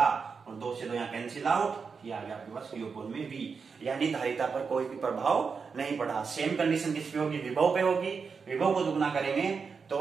और 2 से 2 यहाँ कैंसिल आउट, ये आ गया आपके पास Q में V, यानी धारिता पर कोई भी प्रभाव नहीं पड़ा। सेम कंडीशन किस पे होगी, विभव पे होगी। विभव को दुगना करेंगे तो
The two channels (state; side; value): quieter; left; 5.4 dB